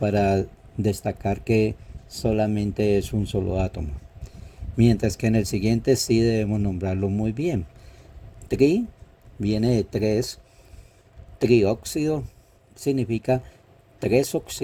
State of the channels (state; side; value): identical; both; correlation 1.00